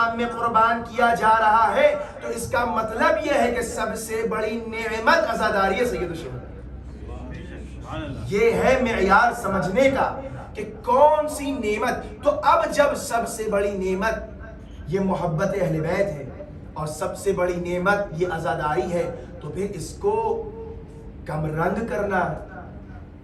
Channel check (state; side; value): identical; both; correlation 1.00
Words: میں قربان کیا جا رہا ہے تو اس کا مطلب یہ ہے کہ سب سے بڑی نعمت عزاداری سید الشہداء۔ یہ ہے معیار سمجھنے کا کہ کون سی نعمت۔ تو اب جب سب سے بڑی نعمت یہ محبت اہل بیت ہے اور سب سے بڑی نعمت یہ عزاداری ہے، تو پھر اس کو کم رنگ کرنا،